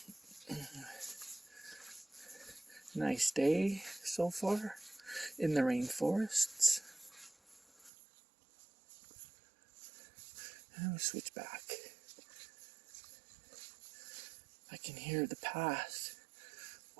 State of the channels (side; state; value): left; drops out; at 7.9 s